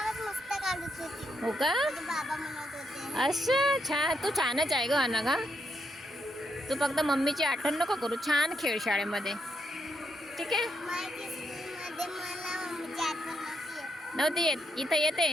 हो का? अच्छा, छान. तू छानच आहे ग अनघा. तू फक्त मम्मीची आठवण नको करू. छान खेळ शाळेमध्ये. ठीक आहे. नव्हती येत, इथं येते.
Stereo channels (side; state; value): both; normal; correlation 0.79